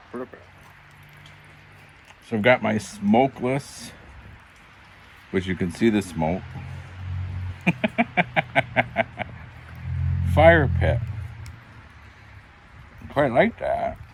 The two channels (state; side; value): identical; both; correlation 1.00